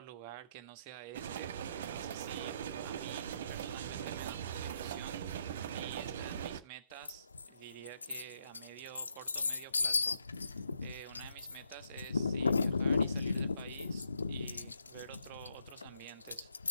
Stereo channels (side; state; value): both; inverted; correlation -0.77